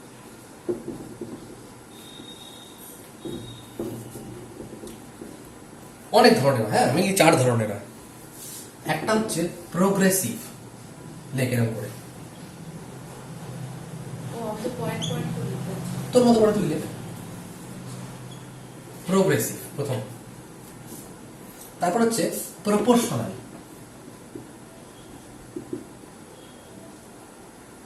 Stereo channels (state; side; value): identical; both; correlation 1.00